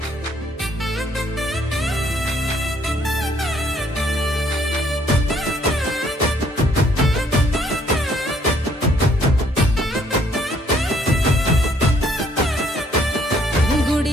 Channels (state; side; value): normal; both; correlation 0.65